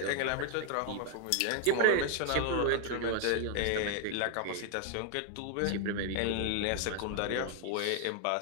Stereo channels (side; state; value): both; different; correlation 0.00